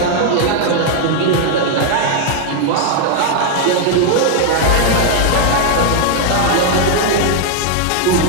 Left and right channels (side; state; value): both; different; correlation 0.00